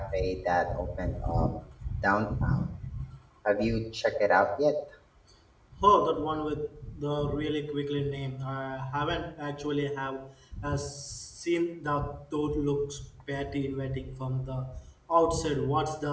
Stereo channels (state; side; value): identical; both; correlation 1.00